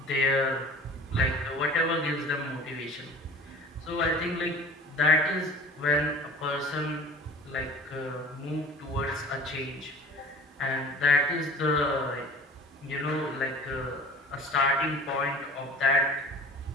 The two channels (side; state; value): both; normal; correlation 0.43